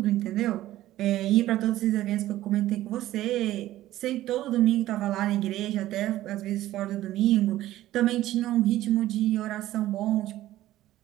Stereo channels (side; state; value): left; quieter; 14.7 dB